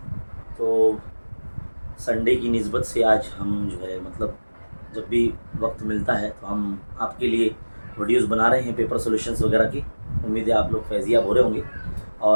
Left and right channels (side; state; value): both; inverted; correlation -1.00